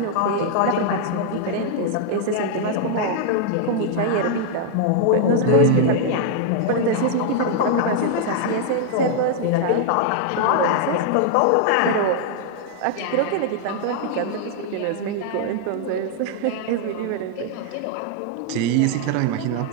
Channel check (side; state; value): both; different; correlation -0.01